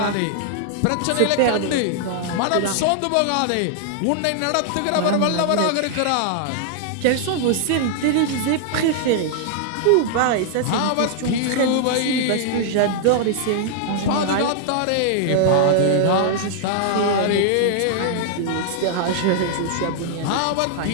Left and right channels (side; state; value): both; different; correlation 0.00